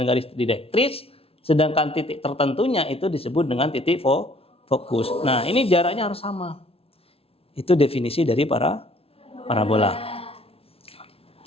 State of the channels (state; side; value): late; right; 0.27 ms